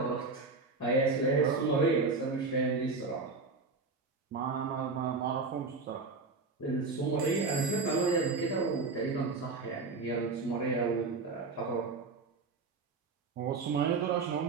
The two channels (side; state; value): left; quieter; 4.1 dB